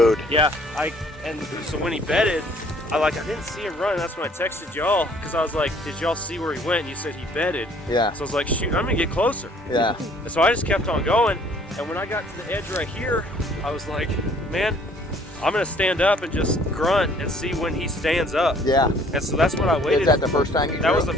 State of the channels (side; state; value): both; normal; correlation 0.58